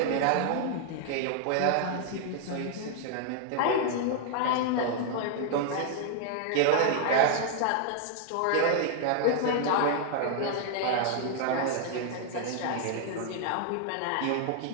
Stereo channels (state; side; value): different; both; correlation 0.00